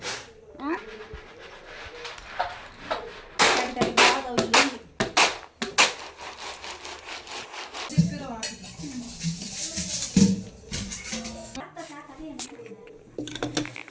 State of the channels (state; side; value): identical; both; correlation 1.00